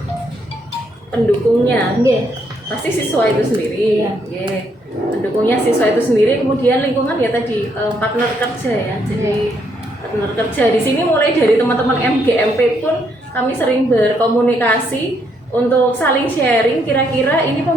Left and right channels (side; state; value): both; normal; correlation 0.73